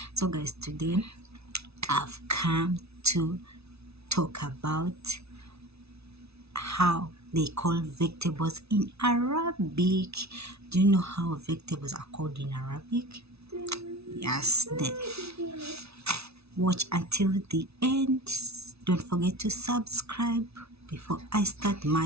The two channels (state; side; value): late; left; 0.79 ms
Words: So, guys, today I've come to talk about how they call vegetables in Arabic. Do you know how vegetables are called in Arabic? Yes, then watch until the end. Don't forget to subscribe. Before I start